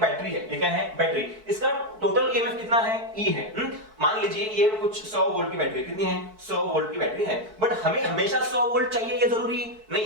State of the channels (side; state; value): left; late; 4.6 ms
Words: है। ये क्या है? बैटरी। इसका टोटल ईएमएफ कितना है? E है। मान लीजिए ये कुछ 100 वोल्ट की बैटरी। कितनी है? 100 वोल्ट की बैटरी है। बट हमें हमेशा 100 वोल्ट चाहिए ये जरूरी नहीं